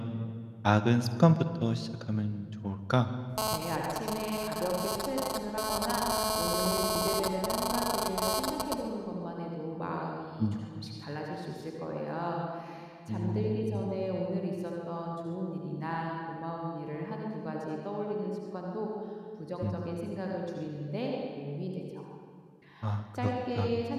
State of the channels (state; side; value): identical; both; correlation 1.00